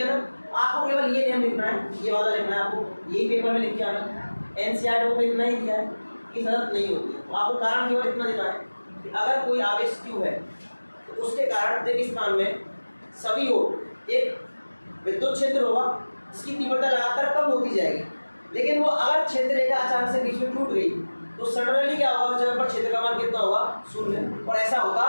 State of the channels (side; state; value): both; inverted; correlation -1.00